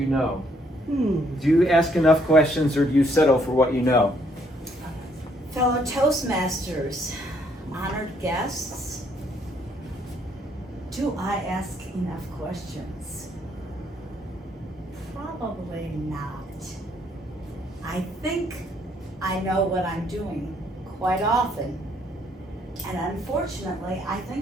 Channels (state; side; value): normal; both; correlation 0.68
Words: know? Do you ask enough questions, or do you settle for what you know? Fellow Toastmasters, honored guests, do I ask enough questions? Probably not. I think I know what I'm doing quite often. And unfortunately, I